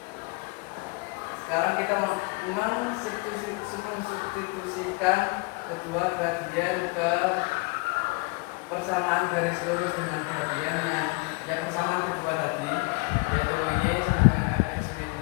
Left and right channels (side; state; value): right; quieter; 27.9 dB